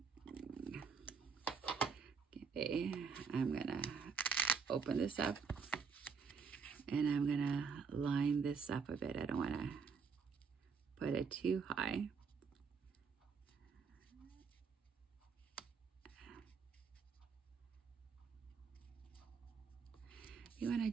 Okay, I'm gonna open this up and I'm gonna line this up a bit. I don't wanna put it too high. You want to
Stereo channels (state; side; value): quieter; left; 5.8 dB